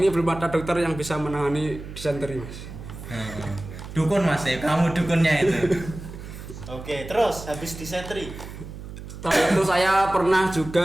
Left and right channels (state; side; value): noise; right; hum, 12 dB below the sound